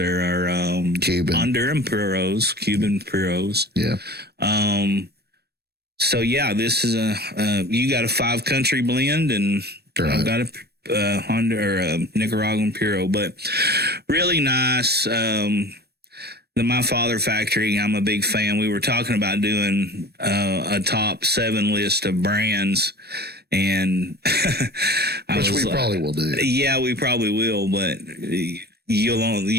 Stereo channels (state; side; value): late; left; 0.47 ms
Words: are Cuban. Honduran Puros, Cuban Puros. Yeah. So yeah, this is you got a 5-country blend, and Right. I've got a Honda or a Nicaraguan Puro, but really nice. The My Father Factory, I'm a big fan. We were talking about doing a top 7 list of brands, and which we probably will do. Yeah, we probably will, but